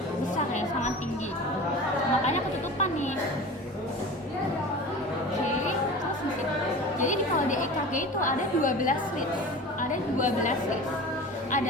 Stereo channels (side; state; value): both; normal; correlation 0.35